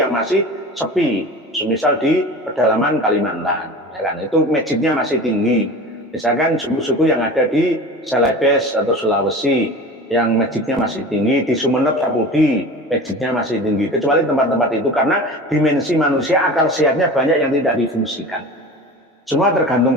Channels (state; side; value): normal; both; correlation 0.35